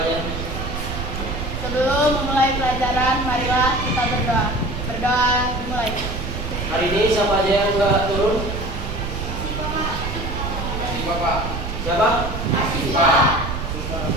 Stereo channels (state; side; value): noise; right; rumble, 5 dB below the sound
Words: Sebelum memulai pelajaran, marilah kita berdoa. Berdoa dimulai. Hari ini siapa aja yang nggak turun? Bapak. Siapa?